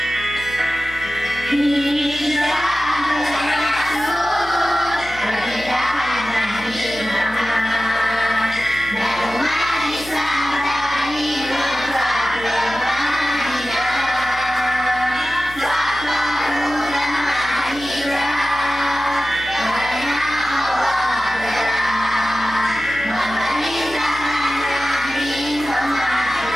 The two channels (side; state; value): left; noise; hum, 17 dB below the sound